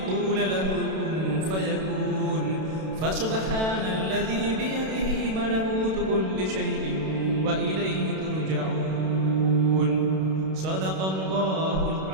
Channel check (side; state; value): left; late; 32 ms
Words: له كن فيكون فسبحان الذي بيده ملكوت كل شيء وإليه ترجعون صدق الله